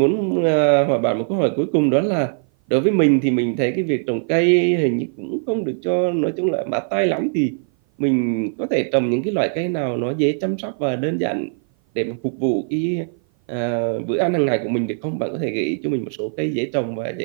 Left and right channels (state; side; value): silent; left; 56 dB below the other